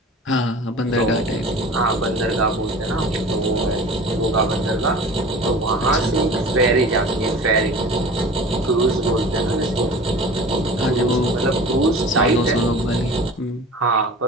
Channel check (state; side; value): normal; both; correlation 0.40